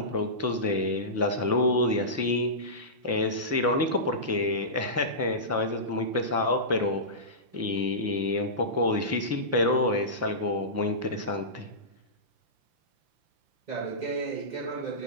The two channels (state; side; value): late; left; 5.8 ms